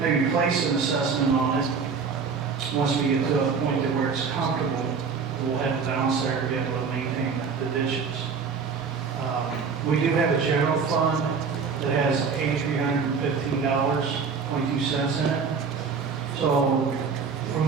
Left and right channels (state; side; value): quieter; left; 5.6 dB